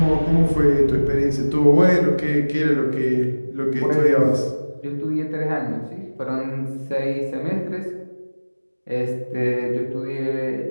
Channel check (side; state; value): both; inverted; correlation -1.00